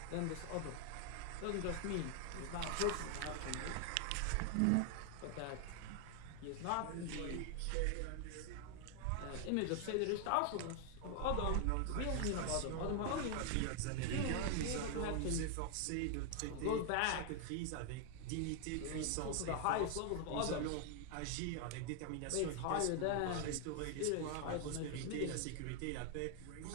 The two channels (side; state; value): both; different; correlation 0.00